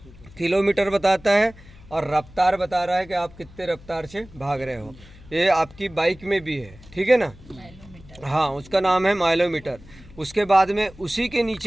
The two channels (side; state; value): left; noise; hum, 21 dB below the sound